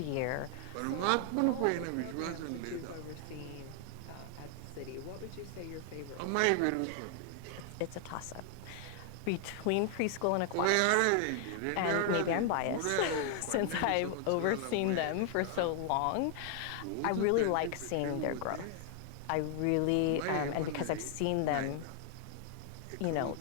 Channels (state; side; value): different; both; correlation 0.00